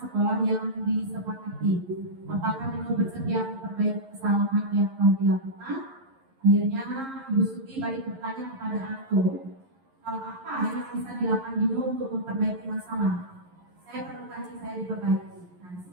yang disepakati. Apakah Dino bersedia memperbaiki kesalahan yang telah dilakukan? Akhirnya Ibu Suti balik bertanya kepada Anto, hal apa yang bisa dilakukan Dino untuk memperbaiki masalah? Saya perlu kaji saya diperbaiki. Nah,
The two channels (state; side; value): late; left; 11 ms